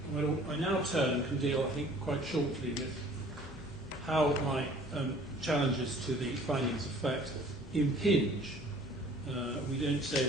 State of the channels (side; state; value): left; noise; hum, 24 dB below the sound